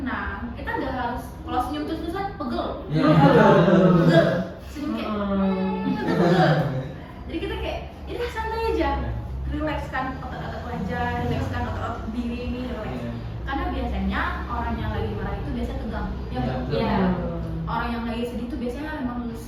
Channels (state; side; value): identical; both; correlation 1.00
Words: Kita nggak harus kalau senyum terus-terusan pegel, Iya. pegel, senyum kayak kita pegel. Jadi kita kayak ya udah santai aja, relaxkan otot-otot wajah, relaxkan otot-otot diri ini, relax. Iya. Karena biasanya orang yang lagi marah itu biasa tegang, ya Iya, nggak? betul. Iya. Orang yang lagi sedih itu biasanya memang